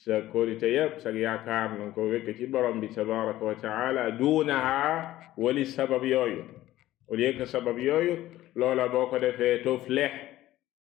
kóolite yépp sa yaakaar nanga ko wékk ci borom bi tabaraka wa taala, duunaha wali sabab yooyu. au lieu que sabab yooyu, loola boo ko defee tuflih,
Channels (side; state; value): right; quieter; 15.0 dB